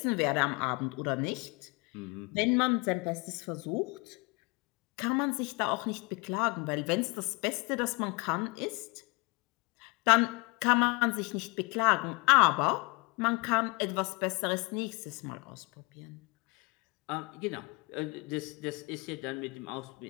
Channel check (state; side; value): quieter; right; 28.2 dB